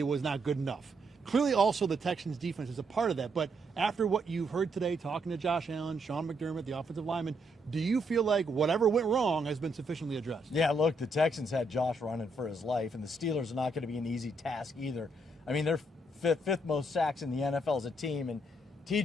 was not good enough. Clearly, also, the Texans' defense is a part of that. But after what you've heard today, talking to Josh Allen, Sean McDermott, the offensive lineman, do you feel like whatever went wrong has been sufficiently addressed? Yeah, look, the Texans had Josh running for his life, and the Steelers are not going to be an easy task either. I mean, they're fifth most sacks in the NFL as a team, and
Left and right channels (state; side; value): normal; both; correlation 0.75